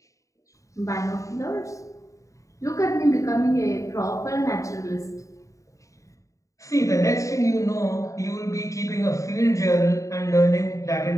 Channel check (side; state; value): right; late; 0.16 ms